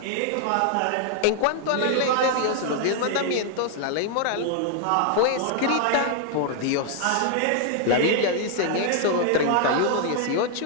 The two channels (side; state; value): both; different; correlation 0.00